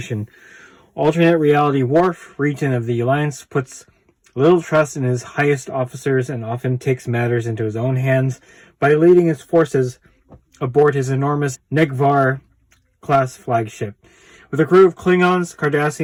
Alternate reality Worf, Regent of the Alliance, puts little trust in his highest officers and often takes matters into his own hands by leading his forces aboard his enormous Negvar-class flagship. With a crew of Klingons,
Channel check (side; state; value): both; identical; correlation 1.00